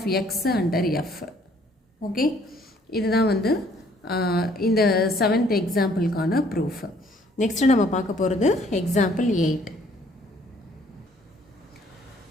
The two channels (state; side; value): normal; both; correlation 0.61